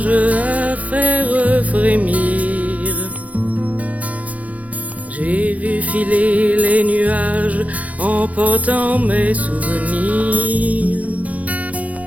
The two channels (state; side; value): late; left; 0.070 ms